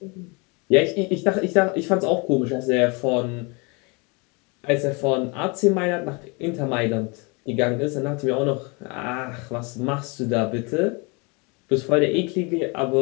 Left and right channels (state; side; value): quieter; right; 30.1 dB